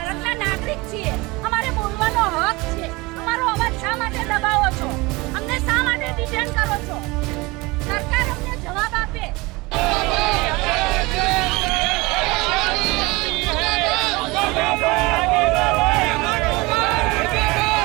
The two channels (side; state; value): left; quieter; 23.7 dB